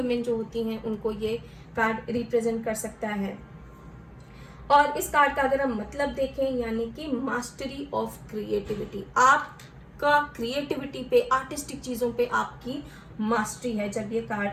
जो होती हैं, उनको ये कार्ड रिप्रेजेंट कर सकता है। और इस कार्ड का अगर हम मतलब देखें, यानी कि मास्टरी ऑफ क्रिएटिविटी, आपका क्रिएटिविटी पे, आर्टिस्टिक चीज़ों पे आपकी मास्टरी है। जब ये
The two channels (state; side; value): identical; both; correlation 1.00